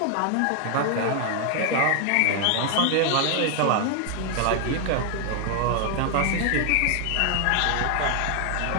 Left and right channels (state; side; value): different; both; correlation 0.00